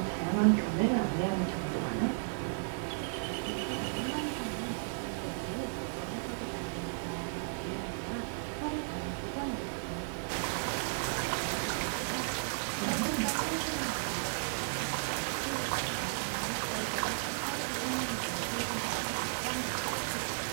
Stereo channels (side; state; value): left; silent; digital silence